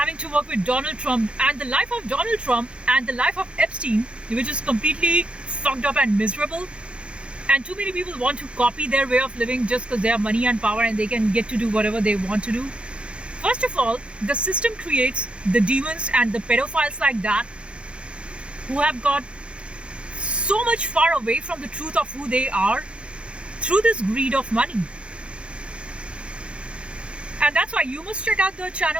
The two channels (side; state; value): left; late; 0.058 ms